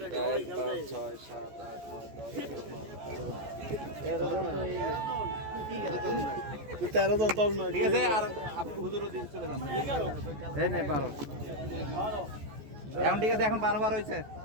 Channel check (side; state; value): left; late; 14 ms